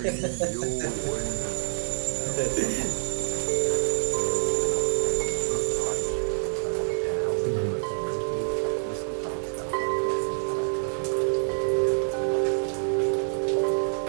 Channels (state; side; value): silent; left; digital silence